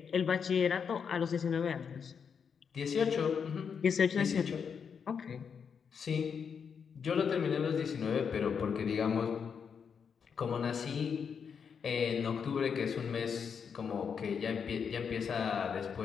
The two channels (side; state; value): right; quieter; 6.7 dB